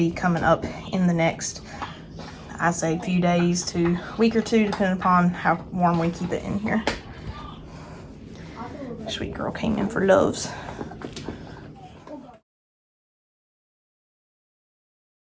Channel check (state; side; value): identical; both; correlation 1.00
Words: coming up in the next, I say, few days to week or two, depending upon how warm we keep it in here. Sweet girl came in for loves.